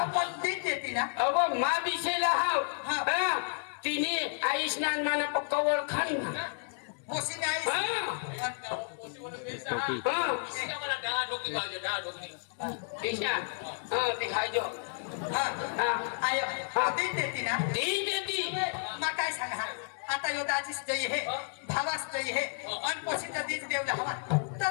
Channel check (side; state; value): right; silent; digital silence